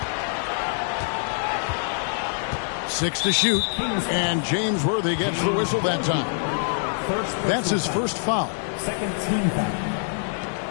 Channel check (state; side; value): silent; right; 62 dB below the other